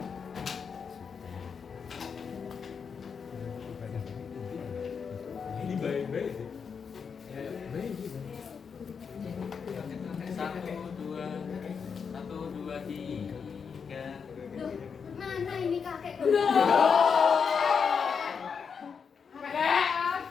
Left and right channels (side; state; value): right; quieter; 6.2 dB